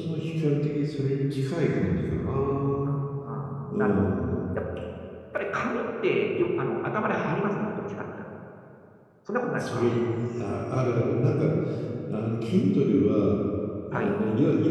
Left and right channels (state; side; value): identical; both; correlation 1.00